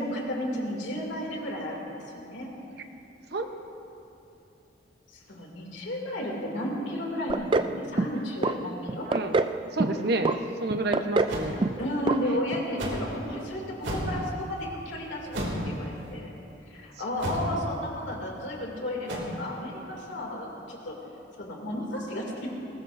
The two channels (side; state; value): both; normal; correlation 0.39